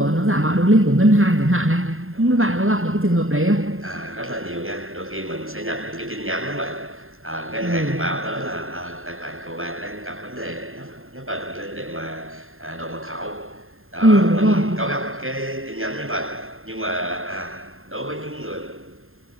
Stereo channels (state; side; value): late; left; 0.61 ms